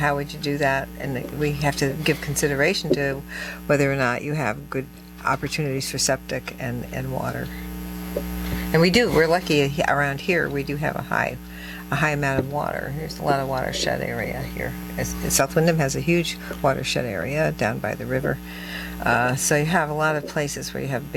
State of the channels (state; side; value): identical; both; correlation 1.00